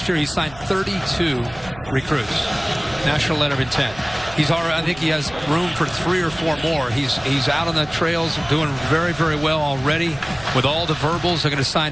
year, he signed 32 recruits. National letter of intent. He's already, I think he has room for 3 or 4 more. He's out on the trails doing very, very well already. With all the verbals, they're going to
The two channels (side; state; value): right; noise; hum, 20 dB below the sound